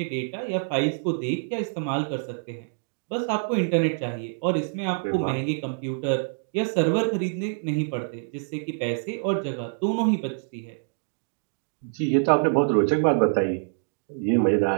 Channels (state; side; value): silent; left; digital silence